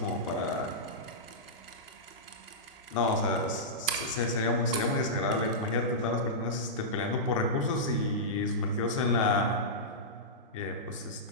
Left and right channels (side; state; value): both; normal; correlation -0.14